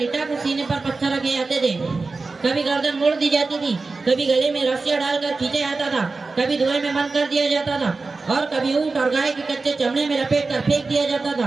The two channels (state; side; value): quieter; left; 3.9 dB